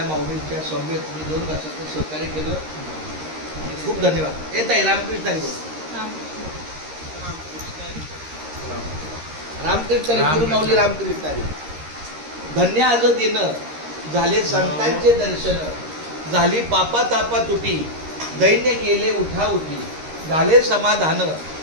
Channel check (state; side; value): late; left; 13 ms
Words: माऊलींच्या समवेत मी 2 तासाचं सहकार्य केलं आणि खूप धन्यवाद. येत आहे रामकृष्णारी बोल. रामकृष्णारी गुरुमाऊली रामकृष्णारी. धन्य आज दिन झाले संतांचे दर्शन, झाली पापा तापा तुटी, दैन्य गेले उठा उठी, झाले समाधान,